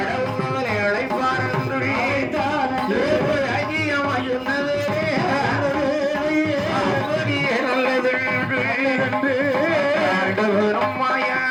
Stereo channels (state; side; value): identical; both; correlation 1.00